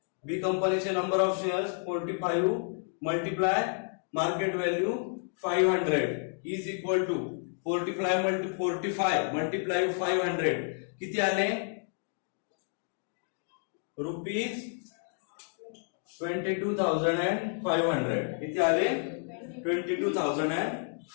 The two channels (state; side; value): silent; right; 57 dB below the other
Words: बी कंपनीचे number of shares 45 multiply market value 500 is equal to 45 multiply 500 किती आले रुपीज 22,500. किती आले